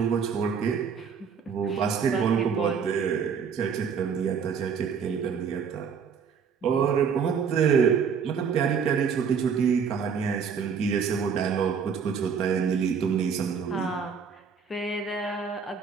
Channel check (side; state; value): left; quieter; 6.5 dB